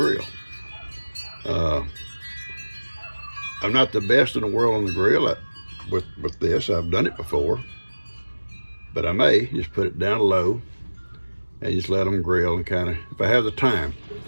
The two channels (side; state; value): both; inverted; correlation -1.00